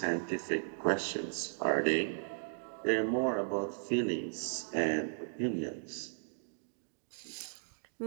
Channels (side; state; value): left; silent; digital silence